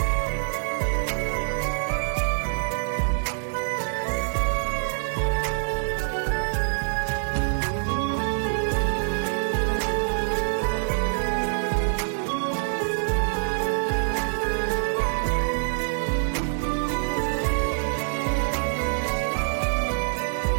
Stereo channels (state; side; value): silent; left; digital silence